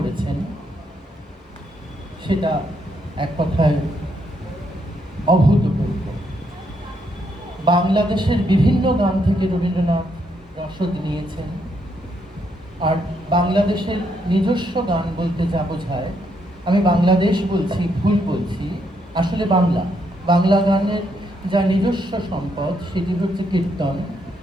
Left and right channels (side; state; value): both; normal; correlation 0.76